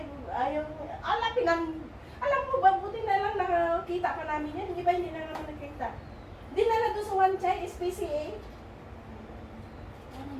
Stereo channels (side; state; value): both; identical; correlation 1.00